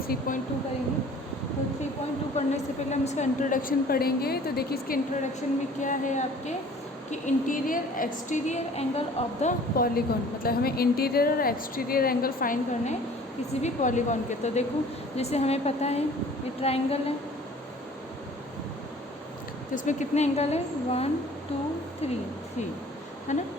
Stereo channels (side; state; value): both; normal; correlation 0.50